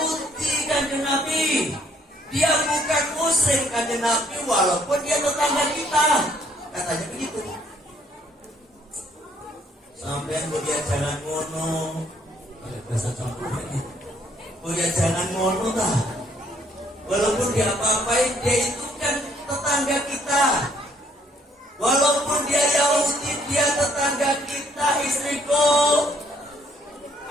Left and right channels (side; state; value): both; normal; correlation 0.67